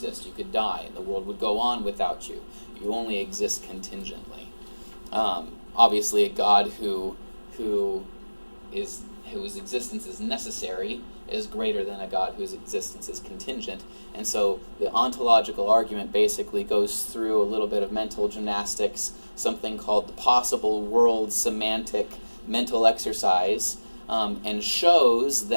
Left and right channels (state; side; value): inverted; both; correlation -1.00